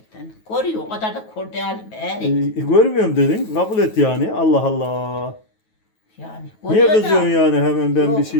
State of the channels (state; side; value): late; right; 9.3 ms